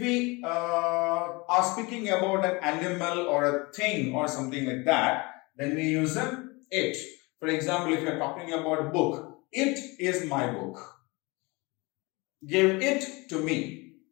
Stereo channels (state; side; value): quieter; right; 25.7 dB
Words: are speaking about an animal or a thing or something like that, then we use a it. For example, if you are talking about book, it is my book. Give it to me.